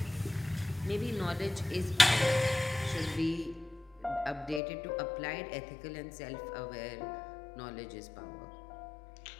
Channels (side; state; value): right; drops out; at 4.6 s